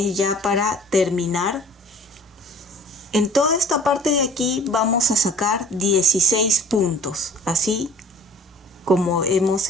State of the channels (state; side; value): normal; both; correlation 0.50